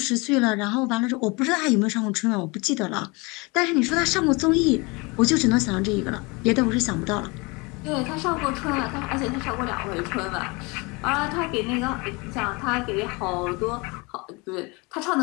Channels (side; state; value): right; quieter; 27.0 dB